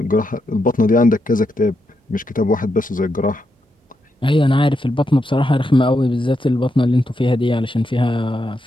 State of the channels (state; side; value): normal; both; correlation 0.83